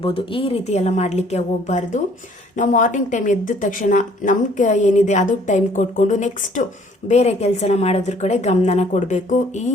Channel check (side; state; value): both; normal; correlation 0.59